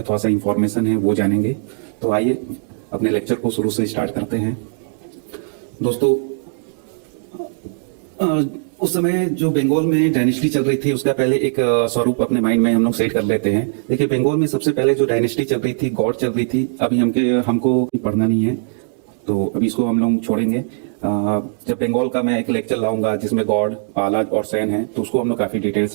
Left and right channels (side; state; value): left; silent; digital silence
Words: थोड़ा सा इंफॉर्मेशन है, वो जानेंगे। तो आइए अपने लेक्चर को शुरू से स्टार्ट करते हैं। दोस्तों, उस समय जो बंगाल में डायनेस्टी चल रही थी उसका पहले एक स्वरूप अपने माइंड में हम लोग सेट कर लेते हैं। देखिए, बंगाल में सबसे पहले जो डायनेस्टी चल रही थी, गौड़ चल रही थी। अभी हमको पढ़ना नहीं है, तो अभी इसको हम लोग छोड़ेंगे। जब बंगाल का मैं एक लेक्चर लाऊंगा जिसमें गौड़, पालाज और सैन है, तो उसको हम लोग काफी